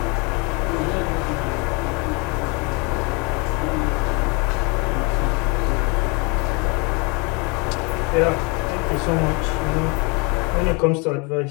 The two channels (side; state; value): right; quieter; 28.5 dB